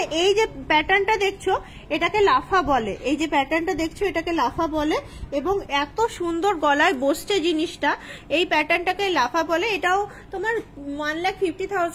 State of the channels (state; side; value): identical; both; correlation 1.00